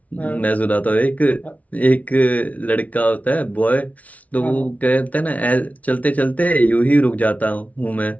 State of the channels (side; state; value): right; late; 0.069 ms